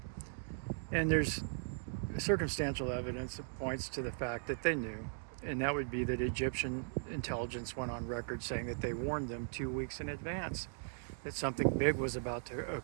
And there's circumstantial evidence that points to the fact that they knew. And that would be that Egyptian intelligence went on record saying that they warned them 2 weeks in advance that something big was about to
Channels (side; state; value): left; silent; digital silence